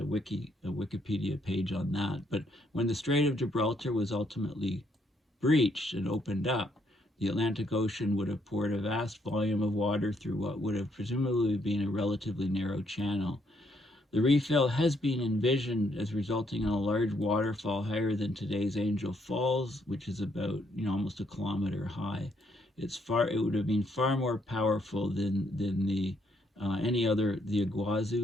Wikipedia page on that. But when the Strait of Gibraltar was ultimately breached and opened up, the Atlantic Ocean would have poured a vast volume of water through what would have presumably been a relatively narrow channel. The refill has been envisioned as resulting in a large waterfall higher than today's Angel Falls, which is about, you know, almost a kilometer high. It would have been far more powerful than the any other, the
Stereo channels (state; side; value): normal; both; correlation 0.72